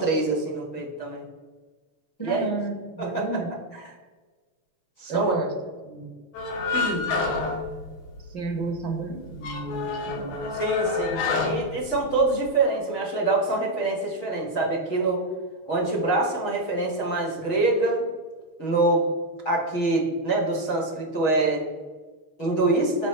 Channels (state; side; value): late; right; 6.3 ms